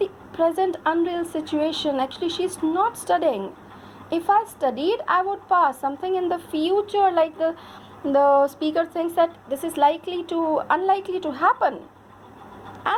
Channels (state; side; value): identical; both; correlation 1.00